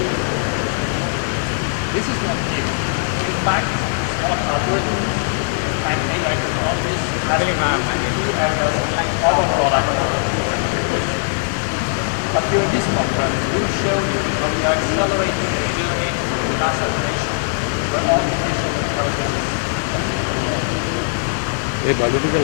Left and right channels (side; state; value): right; silent; 59 dB below the other